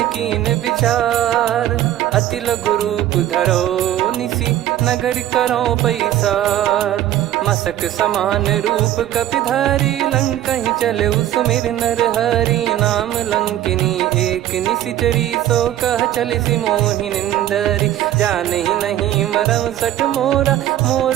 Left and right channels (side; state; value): left; quieter; 12.7 dB